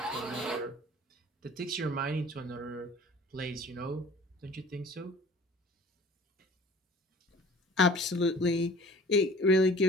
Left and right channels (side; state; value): both; normal; correlation 0.47